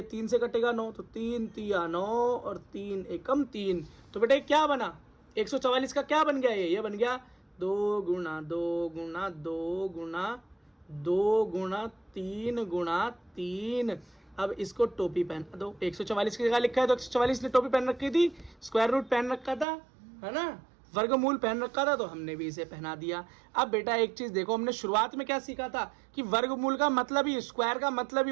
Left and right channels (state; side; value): drops out; left; at 19.7 s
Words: 3 से कटेगा 9, तो 3 तिया 9 और 3 एकम 3। तो बेटा क्या बना? 144 का क्या बन गया? ये बन गया 2 गुना 2 गुना 2 गुना 2 गुना 3 गुना 3। अब इसको टोपी पहन दो। 144 की जगह लिखा है तो 144 ने टोपी पहन रखी थी, स्क्वायर रूट पहन रखा था, है ना, वर्गमूल पहन रखा था, तो हमने भी इसे पहना दिया। अब बेटा एक चीज देखो, हमने शुरुआत में क्या सीखा था कि वर्गमूल का मतलब ही, स्क्वायर का मतलब ही